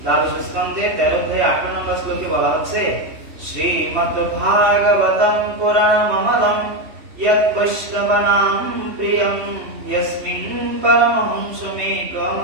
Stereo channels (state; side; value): late; left; 3.0 ms